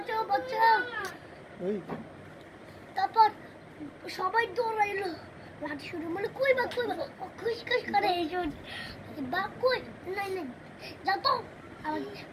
বাঁচাও। তারপর সবাই দৌড়াইলো, লাঠি শুরু বলে কই বাঘ কই বাঘ, খুশ খুশ করে এসো। বাঘ কই, নাই নাই যাও তো।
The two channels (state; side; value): identical; both; correlation 1.00